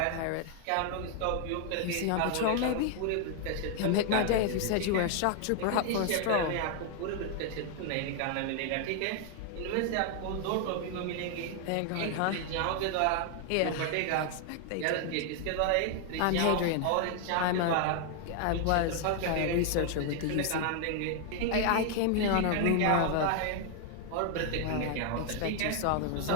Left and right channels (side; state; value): both; different; correlation 0.00